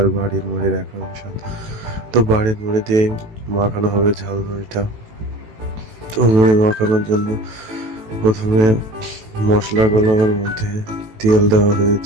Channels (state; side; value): late; left; 18 ms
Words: বাড়ির মুড়ির একরকম স্বাদ। তো বাড়ির মুড়ি দিয়ে মাখানো হবে ঝালমুড়িটা। তো মুড়ি মাখানোর জন্য প্রথমে মশলাগুলোর মধ্যে তেল দেওয়া